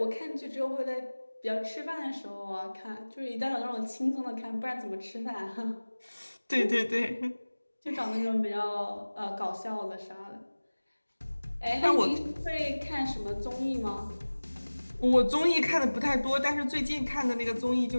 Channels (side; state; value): both; inverted; correlation -1.00